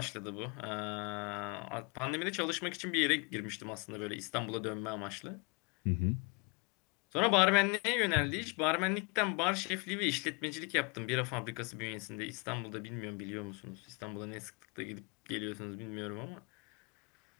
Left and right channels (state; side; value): quieter; right; 31.3 dB